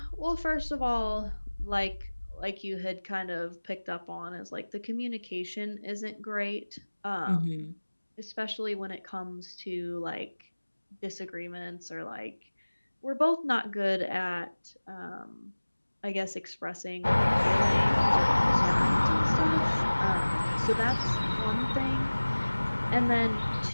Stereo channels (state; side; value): inverted; both; correlation -1.00